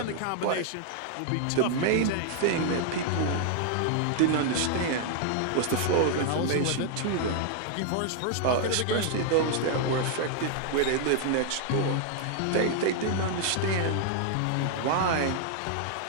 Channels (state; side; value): different; both; correlation 0.00